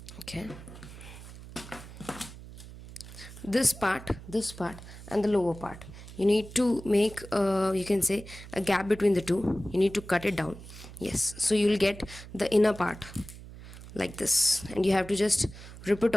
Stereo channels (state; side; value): noise; right; hum, 15 dB below the sound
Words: Okay, this part and the lower part, you need to make you can say a gap between the two. You need to cut it down. Yes, so you'll get the inner part like this, and you have to just rip it